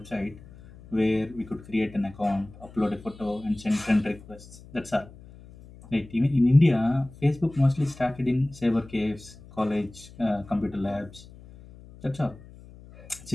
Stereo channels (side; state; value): left; noise; hum, 20 dB below the sound